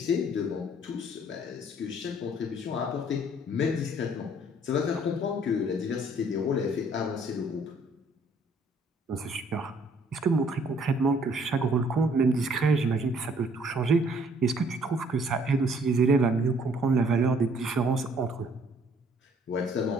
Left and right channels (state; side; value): normal; both; correlation 0.61